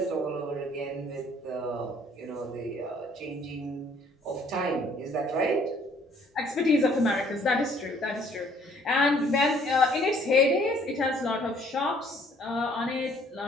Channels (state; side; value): normal; both; correlation 0.60